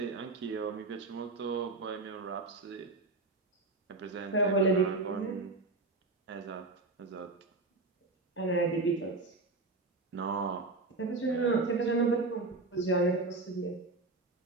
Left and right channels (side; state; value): left; quieter; 3.4 dB